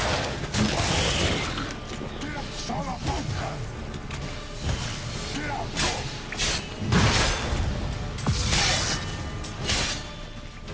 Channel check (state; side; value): identical; both; correlation 1.00